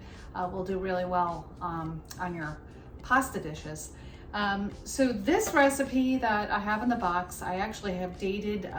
will do really well on your pasta dishes. So this recipe that I have in the box, I actually have dated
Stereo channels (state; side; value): identical; both; correlation 1.00